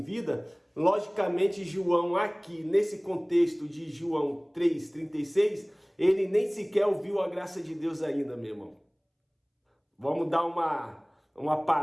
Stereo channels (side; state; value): both; identical; correlation 1.00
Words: vida, logicamente João aqui, nesse contexto de João 3,36, ele nem sequer ouviu a graça de Deus ainda, meu irmão. Vamos dar uma